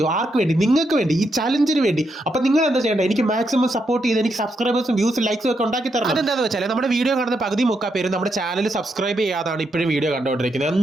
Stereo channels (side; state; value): both; normal; correlation 0.80